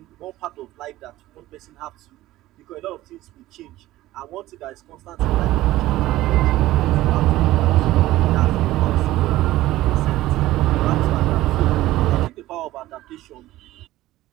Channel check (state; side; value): quieter; left; 16.1 dB